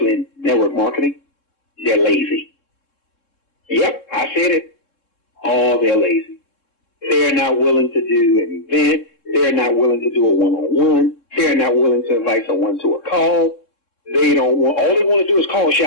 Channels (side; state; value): right; late; 3.7 ms